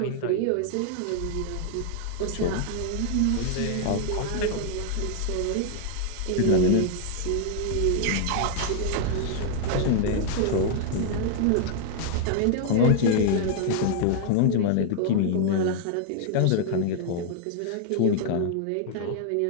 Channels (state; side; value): different; both; correlation 0.00